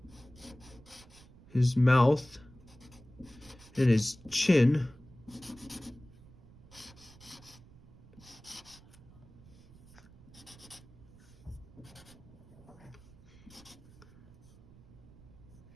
his mouth, and his chin,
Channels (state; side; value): noise; right; rumble, 22 dB below the sound